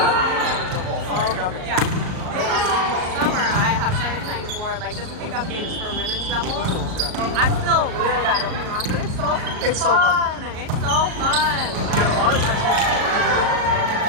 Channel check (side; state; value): left; late; 38 ms